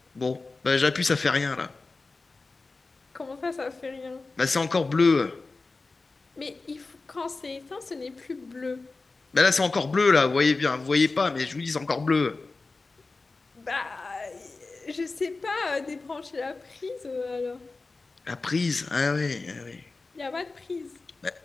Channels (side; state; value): right; quieter; 3.7 dB